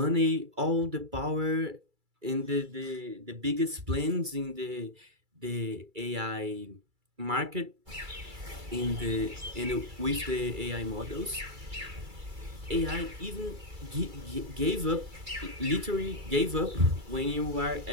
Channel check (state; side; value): late; left; 2.3 ms